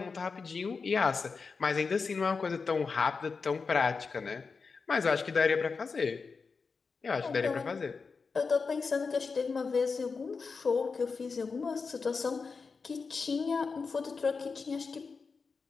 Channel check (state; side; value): quieter; right; 4.8 dB